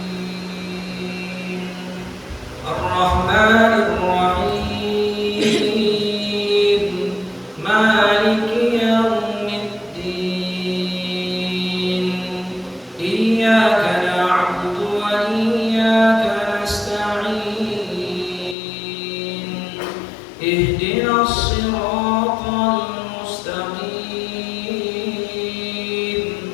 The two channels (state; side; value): drops out; right; at 18.6 s